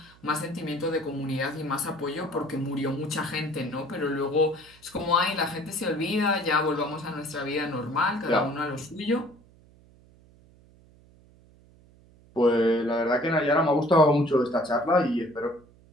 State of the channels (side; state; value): right; noise; hum, 27 dB below the sound